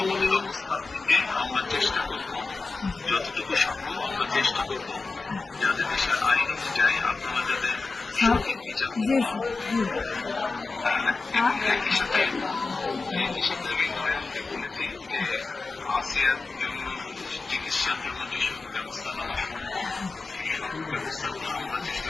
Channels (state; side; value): quieter; right; 3.9 dB